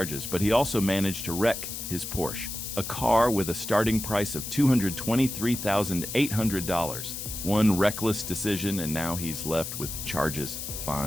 but he also managed to wreck his Porsche, a car with a starting price of $223,800. One reckless decision, and now he's left with charges,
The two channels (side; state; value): left; noise; hiss, 7 dB below the sound